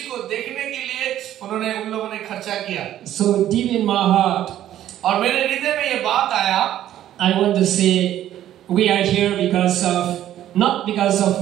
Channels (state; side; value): quieter; left; 12.2 dB